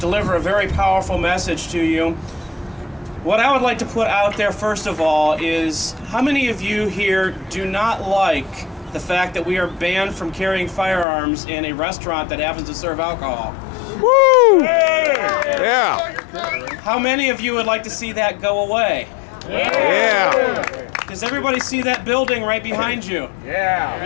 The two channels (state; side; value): drops out; right; at 11.1 s